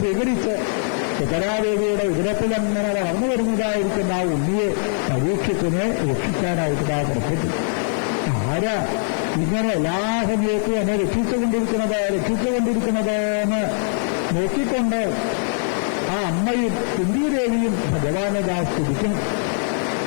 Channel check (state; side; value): silent; right; digital silence